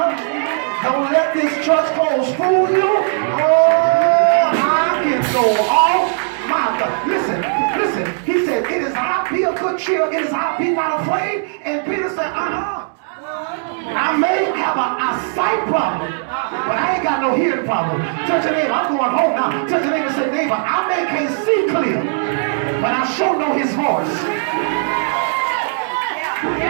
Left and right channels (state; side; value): silent; left; digital silence